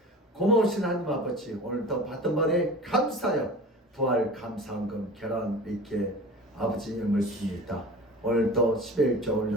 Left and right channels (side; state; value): both; normal; correlation 0.37